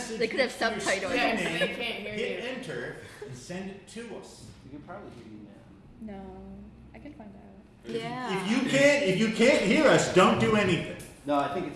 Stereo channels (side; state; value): both; identical; correlation 1.00